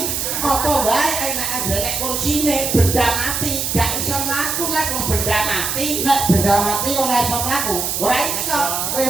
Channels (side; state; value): right; noise; hiss, 1 dB below the sound